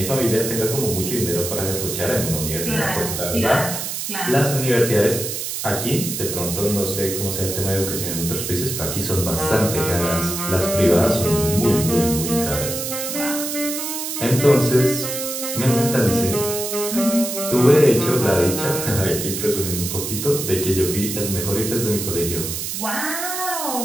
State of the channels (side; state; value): right; noise; hiss, 4 dB below the sound